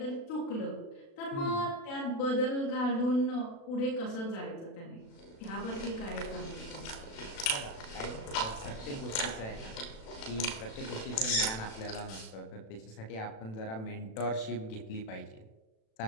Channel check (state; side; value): late; right; 36 ms